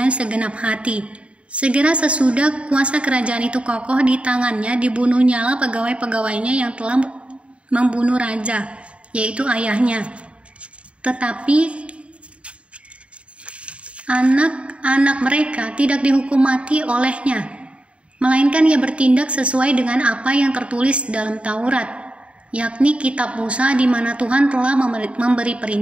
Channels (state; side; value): late; left; 0.061 ms